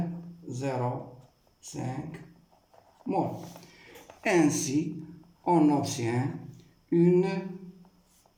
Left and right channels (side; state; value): both; identical; correlation 1.00